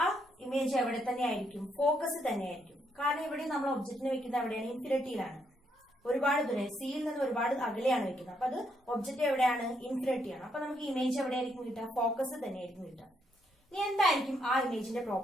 ആ ഇമേജ് എവിടെ തന്നെ ആയിരിക്കും? ഫോക്കസ് തന്നെയായിരിക്കും. കാരണം ഇവിടെ നമ്മൾ ഒബ്ജക്റ്റിനെ വെക്കുന്നത് എവിടെയാണ്? ഇൻഫിനിറ്റിയിലാണ്. ഒരുപാട് ദൂരെ, സിയിൽ നിന്ന് ഒരുപാട് അകലെയാണ് വെക്കുന്നത്. അപ്പൊ അത് ഒബ്ജക്റ്റ് എവിടെയാണ്? ഇൻഫിനിറ്റിയാണ്. അപ്പൊ നമുക്ക് ഇമേജ് എവിടെയായിരിക്കും കിട്ടുക? ഫോക്കസ് തന്നെയായിരിക്കും കിട്ടുക. ഇനി എന്തായിരിക്കും ആ ഇമേജിന്റെ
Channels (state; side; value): normal; both; correlation 0.75